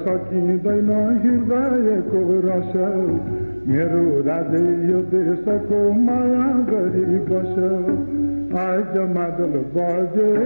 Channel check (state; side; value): inverted; both; correlation -1.00